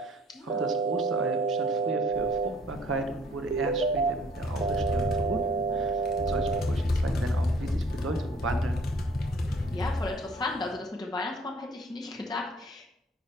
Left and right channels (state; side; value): normal; both; correlation 0.54